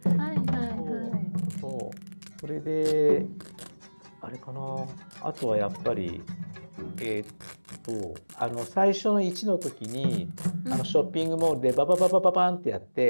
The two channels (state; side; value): inverted; both; correlation -1.00